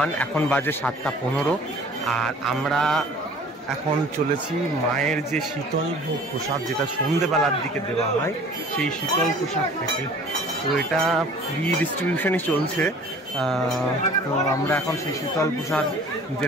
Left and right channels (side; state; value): both; normal; correlation 0.49